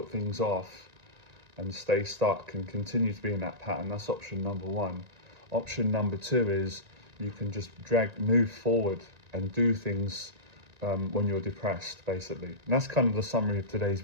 things off and stay stuck and continue to be in that pattern. That's option number one. Option number two is you can just move forward and do things when you're depressed, basically. And that's kind of the summary of today's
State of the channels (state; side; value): late; left; 1.9 ms